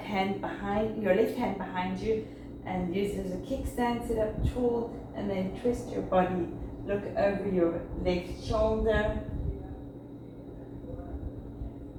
hand behind you and use it as a kickstand. Sit up tall and then twist your body. Look over your left shoulder.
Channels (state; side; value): identical; both; correlation 1.00